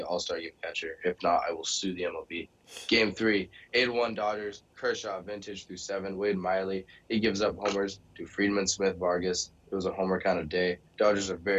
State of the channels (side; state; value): both; identical; correlation 1.00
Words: all-star game catcher. If not, I will sue the MLB. Game 3, 8-1 Dodgers. Kershaw, vintage through 7. Wade Miley, he gives up homers to Friedman, Smith, Vargas. It was a homer kind of day. Dodgers are